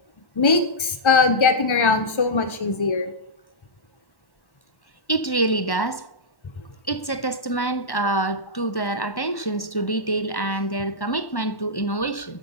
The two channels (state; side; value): late; right; 1.3 ms